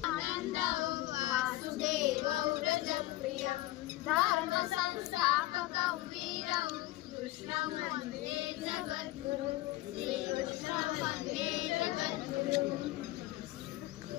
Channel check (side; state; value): right; quieter; 17.0 dB